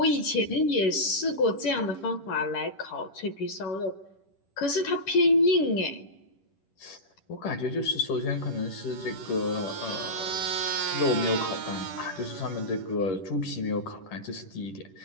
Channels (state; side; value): late; right; 10 ms